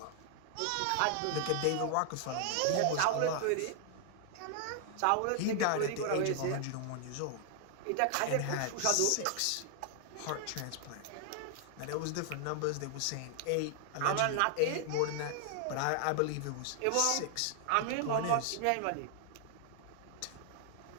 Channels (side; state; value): both; different; correlation 0.00